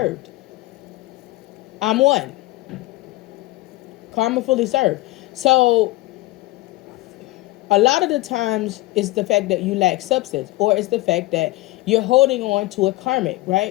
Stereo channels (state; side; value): quieter; right; 19.3 dB